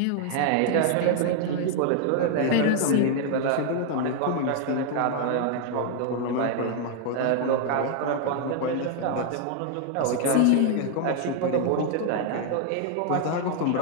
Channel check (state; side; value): different; both; correlation 0.00